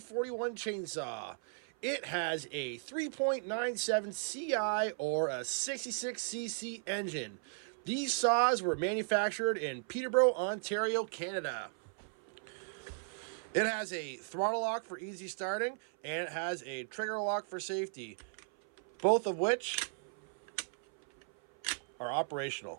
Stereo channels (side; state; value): left; silent; 54 dB below the other